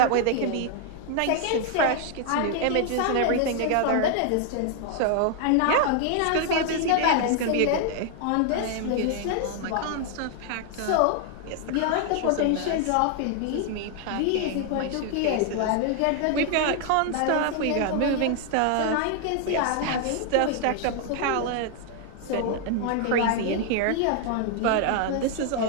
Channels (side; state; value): both; different; correlation 0.00